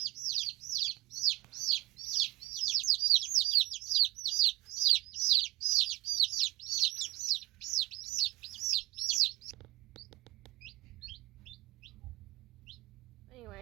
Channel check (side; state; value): left; quieter; 20.1 dB